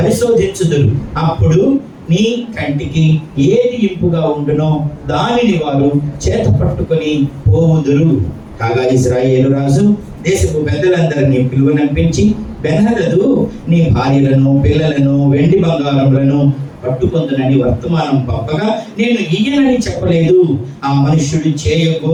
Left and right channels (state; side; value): identical; both; correlation 1.00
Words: అప్పుడు నీ కంటికి ఏది ఇంపుగా ఉండునో దానిని వారు చేత పట్టుకొని పోవుదురు. కాగా ఇశ్రాయేలు రాజు దేశపు పెద్దలందరినీ పిలువనంపించి, బెన్హదదు నీ భార్యలను పిల్లలను వెండి బంగారములను పట్టుకొందునని వర్తమానం పంపగా నేను ఇయ్యనని చెప్పలేదు. ఆ మనుష్యుడు